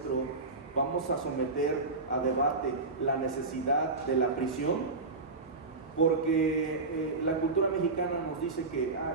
vamos a someter a debate la necesidad de la prisión, porque la cultura mexicana nos dice que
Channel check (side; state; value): left; quieter; 3.6 dB